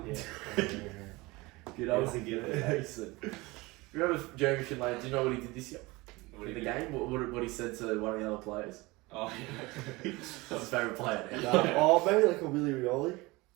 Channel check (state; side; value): quieter; left; 22.7 dB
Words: yeah. Good old Yes, he did. Finlayson. Remember Jeremy Finlay? Do you know what he did this year? What In do the you do? game? What he said to one of the other players? Oh, yeah. That's his favourite player now. Oh, maybe like a Willie Rioli.